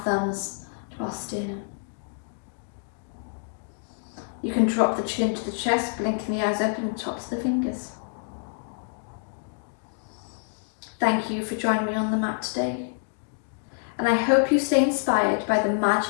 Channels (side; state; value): right; silent; digital silence